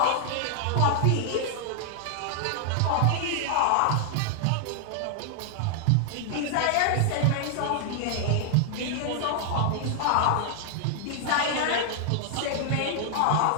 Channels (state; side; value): different; both; correlation 0.00